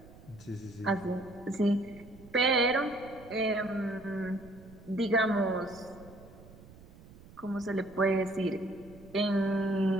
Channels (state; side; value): noise; right; rumble, 21 dB below the sound